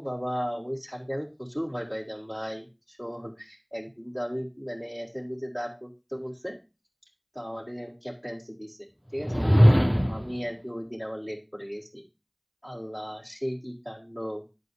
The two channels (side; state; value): both; identical; correlation 1.00